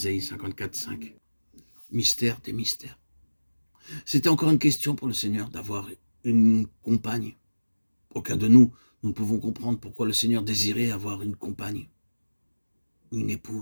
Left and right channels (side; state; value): both; inverted; correlation -1.00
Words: 54,5. Mystère des mystères. C'était encore une question pour le Seigneur d'avoir une compagne. Aucun de nous ne pouvons comprendre pourquoi le Seigneur désirait avoir une compagne, une